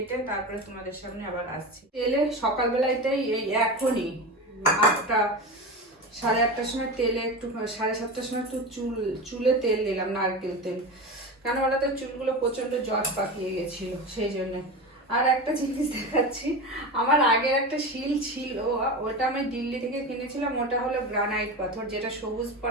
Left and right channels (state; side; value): normal; both; correlation 0.25